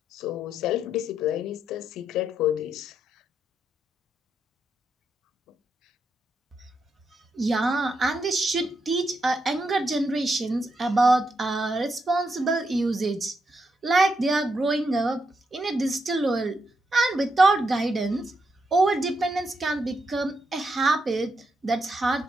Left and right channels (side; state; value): both; normal; correlation 0.81